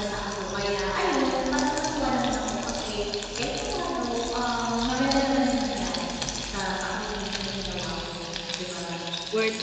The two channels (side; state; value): both; identical; correlation 1.00